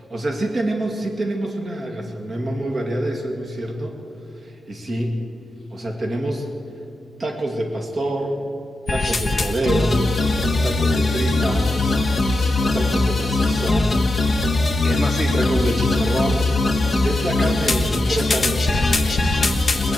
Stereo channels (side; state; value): both; normal; correlation 0.89